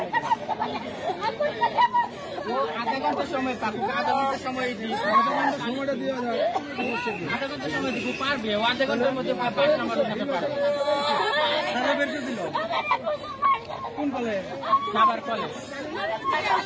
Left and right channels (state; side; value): identical; both; correlation 1.00